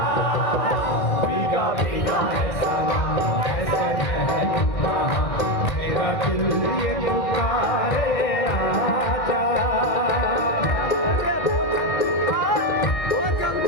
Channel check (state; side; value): late; right; 2.1 ms